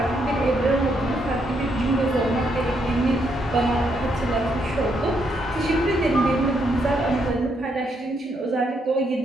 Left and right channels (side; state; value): both; normal; correlation 0.76